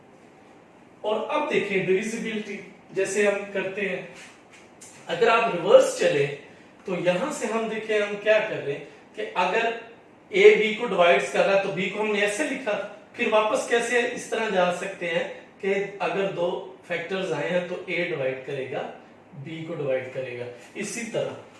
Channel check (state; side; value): identical; both; correlation 1.00